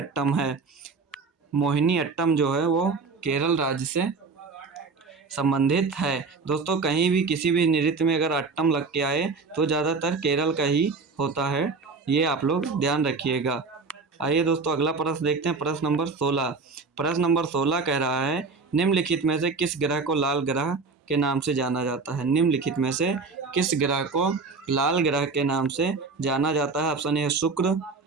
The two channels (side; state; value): left; quieter; 4.4 dB